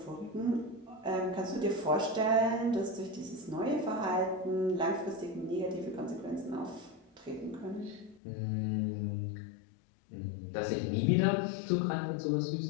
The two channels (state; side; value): drops out; right; at 8.2 s